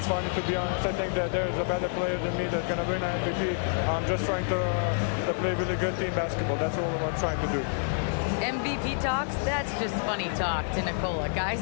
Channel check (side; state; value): right; silent; digital silence